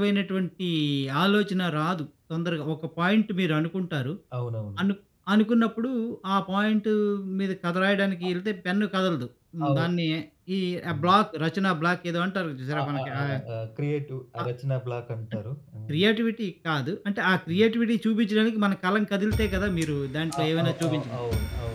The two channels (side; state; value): both; identical; correlation 1.00